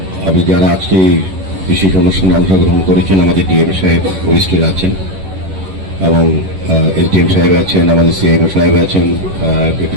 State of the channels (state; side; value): late; left; 11 ms